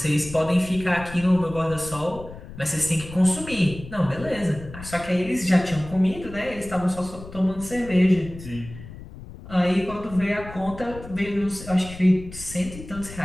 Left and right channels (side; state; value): left; noise; rumble, 14 dB below the sound